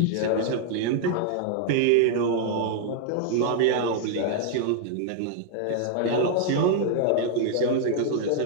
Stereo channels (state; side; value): different; both; correlation 0.00